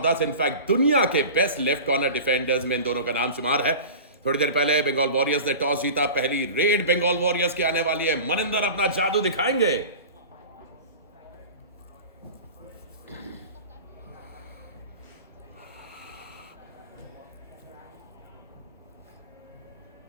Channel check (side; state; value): both; inverted; correlation -0.35